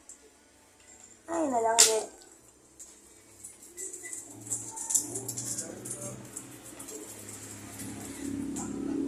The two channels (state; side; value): identical; both; correlation 1.00